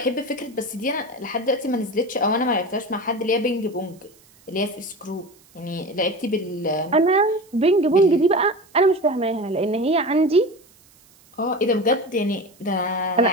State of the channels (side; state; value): right; noise; hiss, 29 dB below the sound